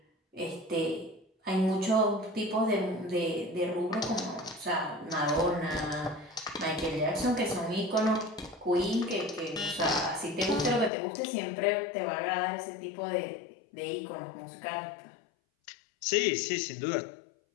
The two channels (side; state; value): right; drops out; at 10.9 s